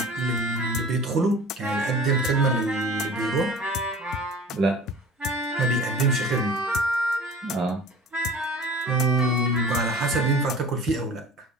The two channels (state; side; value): normal; both; correlation 0.41